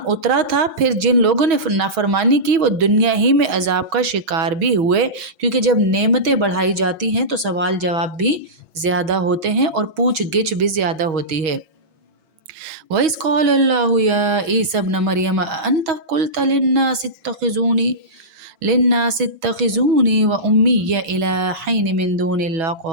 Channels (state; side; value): late; left; 6.2 ms